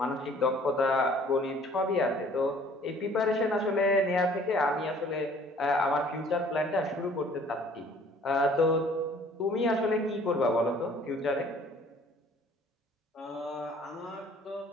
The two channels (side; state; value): both; normal; correlation 0.54